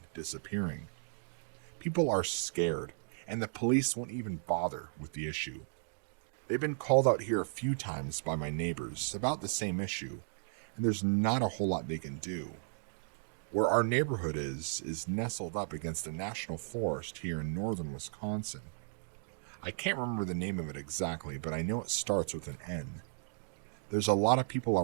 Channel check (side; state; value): left; silent; digital silence